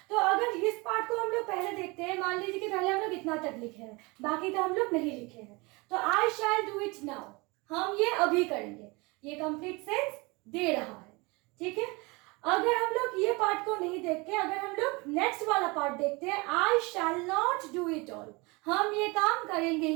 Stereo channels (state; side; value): quieter; left; 26.0 dB